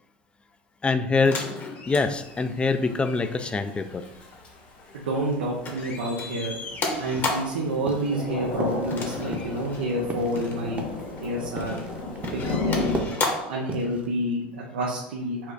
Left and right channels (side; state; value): both; normal; correlation 0.27